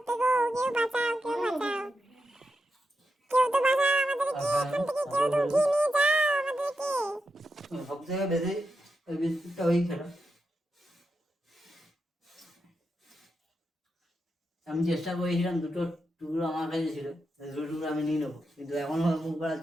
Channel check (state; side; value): normal; both; correlation 0.87